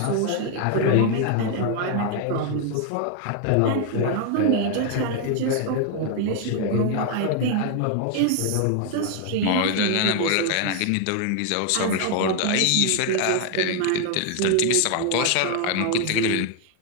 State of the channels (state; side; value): different; both; correlation 0.00